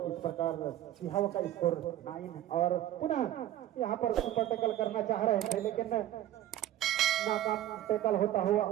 इस प्रकार सिहावा का स्कोर 9, और पुनः यहाँ पर सुपर टैकल करना चाह रहे थे लेकिन नाकाम टैकल होता हुआ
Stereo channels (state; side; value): quieter; left; 13.0 dB